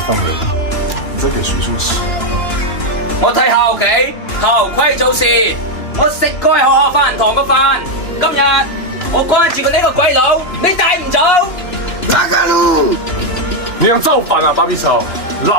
放人，你在給誰做事啊？我睇校企，校規做事。我食過喺學校飯堂個飯，今日我關注過呢個鬼佬，你帶唔走？哪個路？你想造反啊，芭比草！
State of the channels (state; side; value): late; right; 3.2 ms